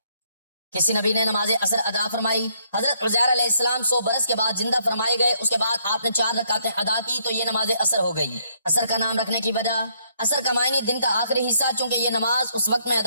کسی نبی نے نماز عصر ادا فرمائی، حضرت عزیر علیہ السلام 100 برس کے بعد زندہ فرمائے گئے، اس کے بعد آپ نے 4 رکعتیں ادا کی تو یہ نماز عصر ہو گئی۔ عصر کا نام رکھنے کی وجہ، عصر کا معنی دن کا آخری حصہ، چونکہ یہ نماز اس وقت میں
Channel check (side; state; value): both; inverted; correlation -0.70